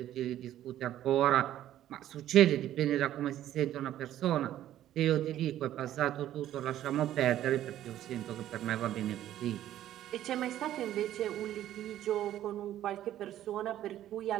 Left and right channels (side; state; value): left; quieter; 12.5 dB